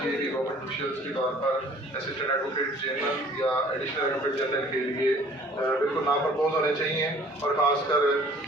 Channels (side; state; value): both; normal; correlation 0.53